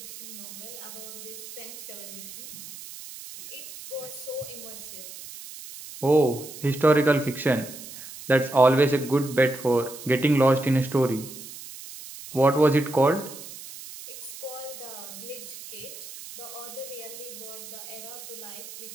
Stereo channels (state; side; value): noise; right; hiss, 13 dB below the sound